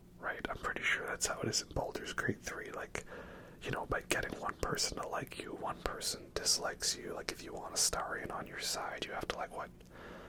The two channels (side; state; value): both; identical; correlation 1.00